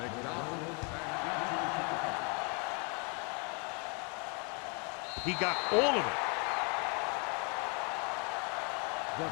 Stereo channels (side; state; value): right; quieter; 35.0 dB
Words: He got all of it.